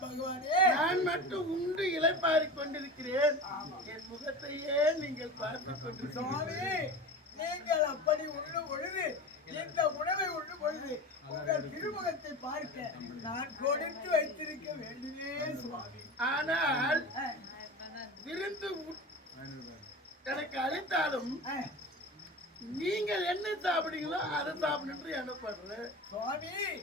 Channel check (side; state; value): both; normal; correlation 0.31